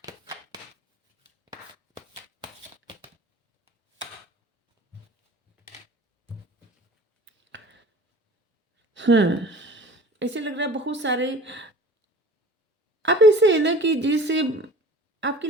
ऐसे लग रहा है बहुत सारे आप ऐसे है ना कि जैसे आपकी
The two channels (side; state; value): both; normal; correlation 0.43